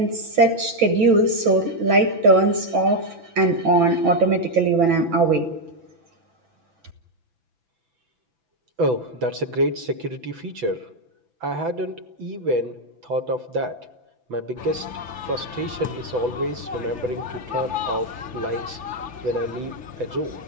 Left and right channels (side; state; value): left; late; 6.0 ms